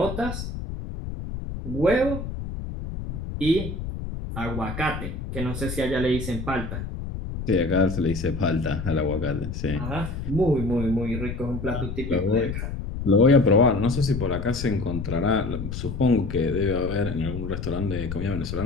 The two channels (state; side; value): noise; left; rumble, 6 dB below the sound